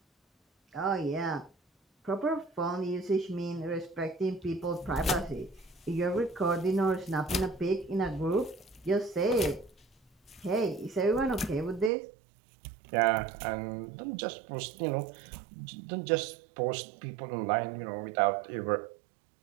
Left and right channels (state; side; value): drops out; left; at 11.9 s